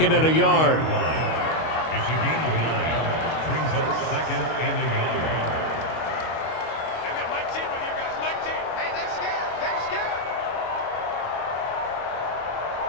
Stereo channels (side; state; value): right; late; 25 ms